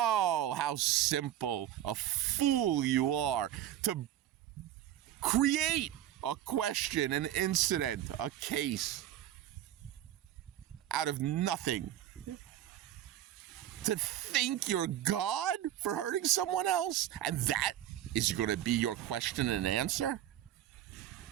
how simple a fool you are to create a question, an incident, a case out of nothing. To think you're God for hurting someone else, and that is going to be your question and answer?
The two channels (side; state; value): left; quieter; 12.1 dB